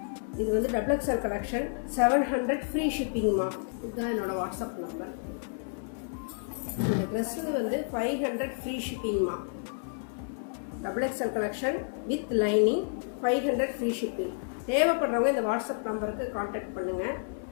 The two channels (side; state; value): right; silent; digital silence